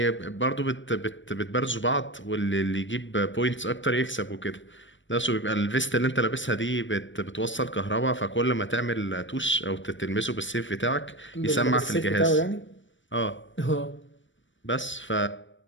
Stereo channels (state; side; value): late; right; 0.55 ms